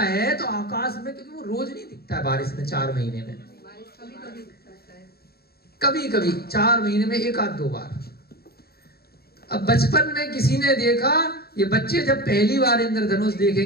तो आकाश में, क्योंकि वो रोज नहीं दिखता है बारिश में, 4 महीने में कभी कभी 4 महीने में 1 आध 2 बार। अब बचपन में किसी ने देखा, ये बच्चे जब पहली बार इंद्रधनुष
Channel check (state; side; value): late; right; 0.45 ms